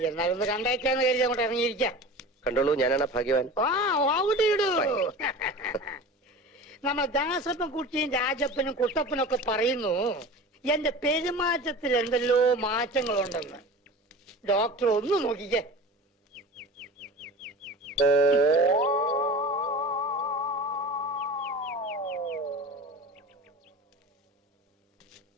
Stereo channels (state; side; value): normal; both; correlation 0.35